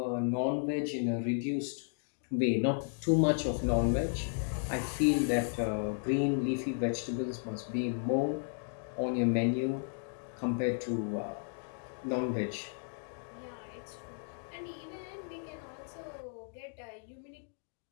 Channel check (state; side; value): silent; right; digital silence